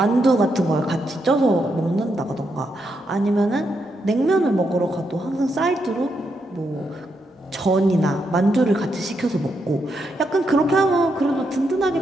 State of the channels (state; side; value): normal; both; correlation 0.81